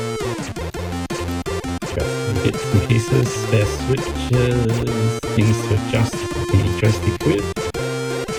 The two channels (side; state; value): both; identical; correlation 1.00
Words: Got some bits and pieces, spare switches, things to adjust the joystick with.